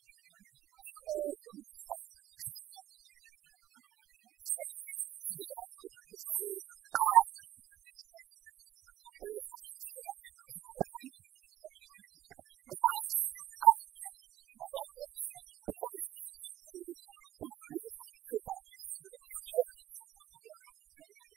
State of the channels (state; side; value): quieter; left; 13.2 dB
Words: and all regional chairmen. As many as are in favor, please say aye. Those not in favor, say no. The ayes have it. On that note, the committees are duly inaugurated for Congress. Thank you very much.